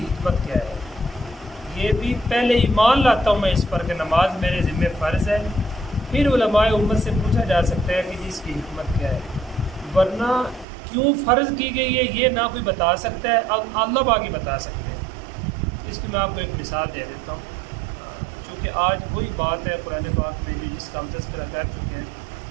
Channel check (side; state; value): left; drops out; at 10.7 s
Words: کیا ہے. یہ بھی پہلے ایمان لاتا ہوں میں اس پر کہ نماز میرے ذمہ فرض ہے، پھر علماء امت سے پوچھا جا سکتا ہے کہ اس کی حکمت کیا ہے. ورنہ کیوں فرض کی گئی ہے یہ نہ کوئی بتا سکتا ہے، اللہ باقی بتا سکتے ہیں. اس کی میں آپ کو ایک مثال دے دیتا ہوں کہ آج وہی بات ہے قرآن پاک میں جس کا ہم تذکرہ کر چکے ہیں،